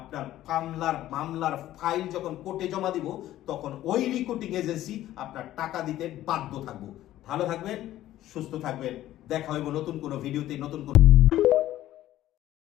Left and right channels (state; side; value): quieter; right; 13.9 dB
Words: মামলার ফাইল যখন কোর্টে জমা দিব তখন ওই রিক্রুটিং এজেন্সি আপনার টাকা দিতে বাধ্য থাকবো। ভালো থাকবেন, সুস্থ থাকবেন, দেখা হইব নতুন কোনো ভিডিওতে, নতুন কোনো